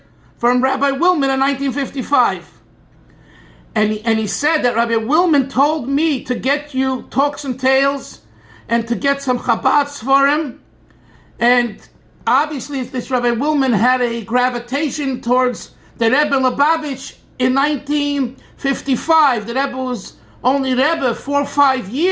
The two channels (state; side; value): identical; both; correlation 1.00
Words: from Rabbi Willman in 1955. And he said that Rabbi Willman told me to get you Talks and Tales and to get some Chabad for him. And obviously, this Rabbi Willman had a gravitation towards the Rebbe Lubavitch in 1955. The Rebbe was only Rebbe 4 or 5